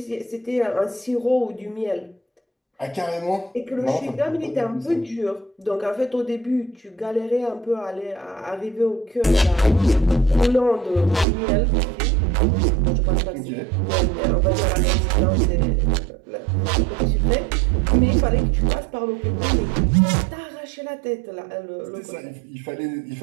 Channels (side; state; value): left; drops out; at 11.2 s